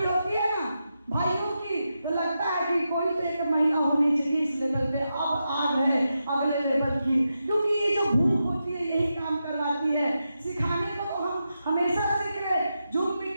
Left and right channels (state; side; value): inverted; both; correlation -0.88